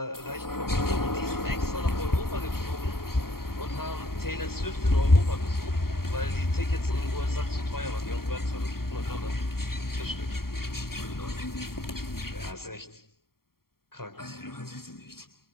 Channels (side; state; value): right; late; 0.93 ms